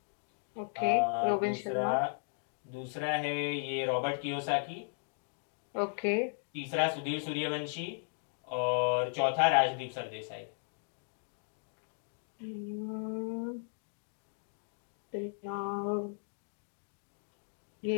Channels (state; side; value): silent; right; digital silence